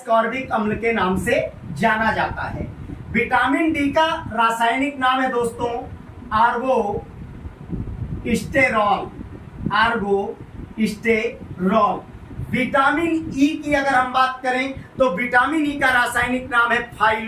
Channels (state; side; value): identical; both; correlation 1.00